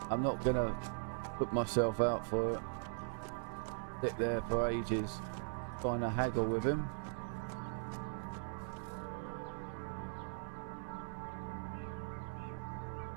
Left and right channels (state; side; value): silent; left; 51 dB below the other